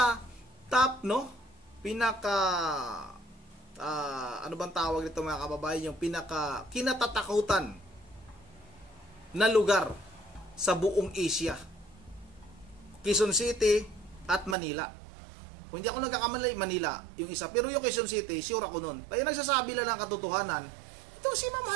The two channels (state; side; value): drops out; left; at 14.6 s